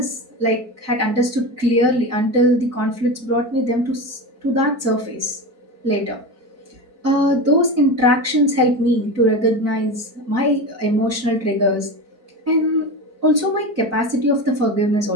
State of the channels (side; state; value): left; late; 4.5 ms